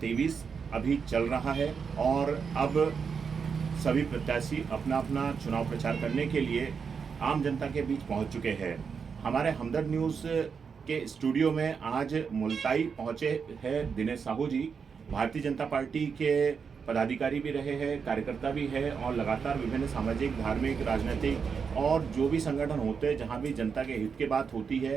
अभी चल रहा है और अब सभी प्रत्याशी अपना अपना चुनाव प्रचार करने के लिए आम जनता के बीच पहुंच चुके हैं। हमारे हमदर्द न्यूज़ के स्टूडियो में आज मुल्ताई पहुंचे हैं दिनेश साहू जी। भारतीय जनता पार्टी के पदाधिकारी भी रहे हैं, कार्यकर्ता भी है और लगातार विभिन्न सामाजिक, धार्मिक, राजनीतिक और जो भी संगठन होते हैं, जहां भी जनता के हित की बात होती है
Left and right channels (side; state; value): left; quieter; 6.0 dB